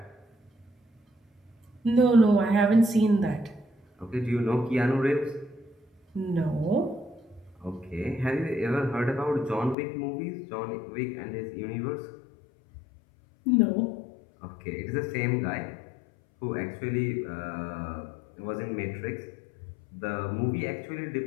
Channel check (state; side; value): drops out; right; at 9.8 s